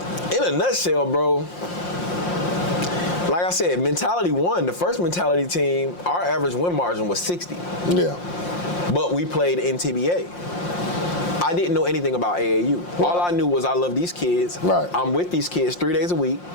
in a nutshell, bro, like I said, mentality won. The first mentality team, our average win margin was 60. Yeah. But we played NTBA. I didn't know anything about AAU. Right. All I knew was I love these kids. Right. I'm with these kids 3 days a week,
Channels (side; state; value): right; late; 5.7 ms